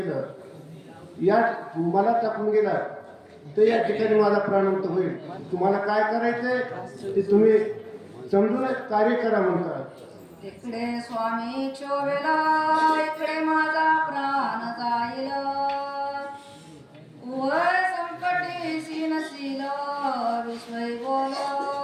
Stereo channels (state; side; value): identical; both; correlation 1.00